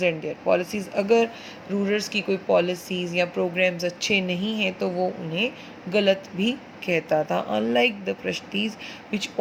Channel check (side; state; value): both; identical; correlation 1.00